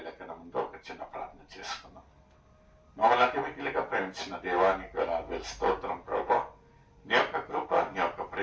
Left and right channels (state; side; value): identical; both; correlation 1.00